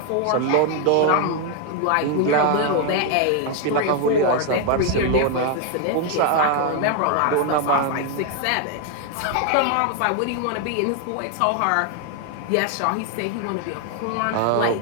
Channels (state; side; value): different; both; correlation 0.01